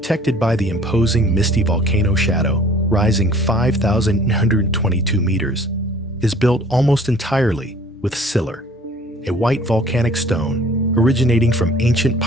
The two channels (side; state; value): both; normal; correlation 0.52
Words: by the imposing misty volcano shadow, rising 5,922 meters, is built almost entirely with sillar, a white volcanic stone originating from ancient